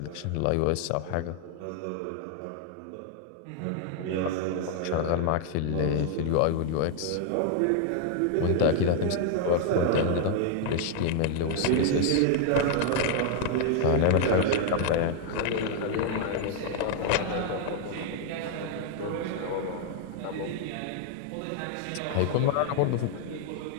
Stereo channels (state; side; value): different; both; correlation 0.00